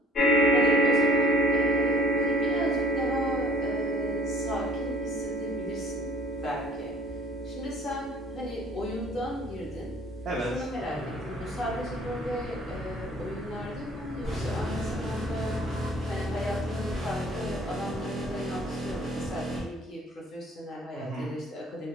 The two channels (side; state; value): both; normal; correlation 0.53